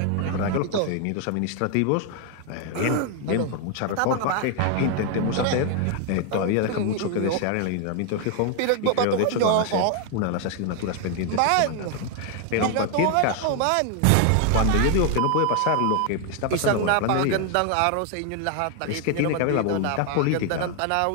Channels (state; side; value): different; both; correlation 0.01